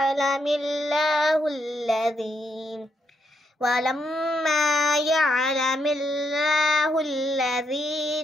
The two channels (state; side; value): normal; both; correlation 0.79